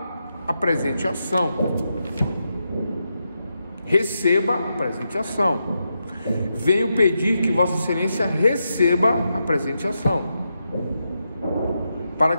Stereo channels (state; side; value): inverted; both; correlation -0.86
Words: a presente ação. Receba a presente ação. Venho pedir que Vossa Excelência receba a presente ação, para